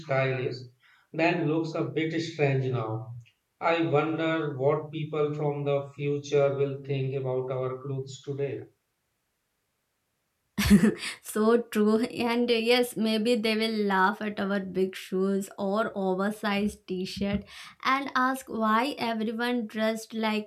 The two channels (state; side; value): identical; both; correlation 1.00